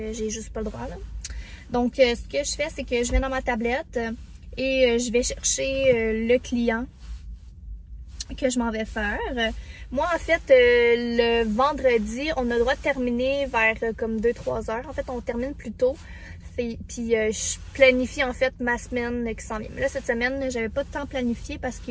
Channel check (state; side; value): identical; both; correlation 1.00